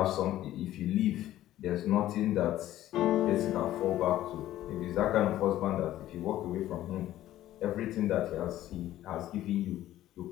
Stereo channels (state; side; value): quieter; right; 13.8 dB